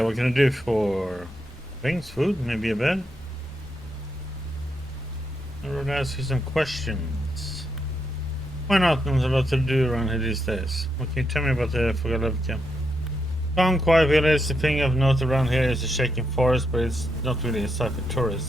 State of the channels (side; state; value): both; normal; correlation 0.81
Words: What can I do for things, food, maybe a bed? I would ask you some questions. Why not? There's a lot to do around here these days. What can you tell me about the Vogalevka? Calm, quiet village. The thing of note around here is the shaking forest, but it's not really a site for